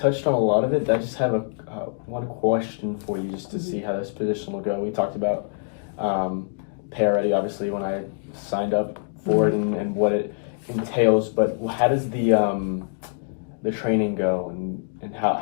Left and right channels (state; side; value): silent; right; digital silence